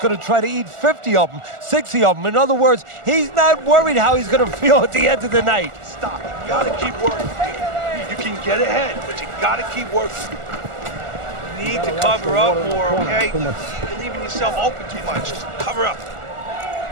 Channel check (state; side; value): late; left; 1.4 ms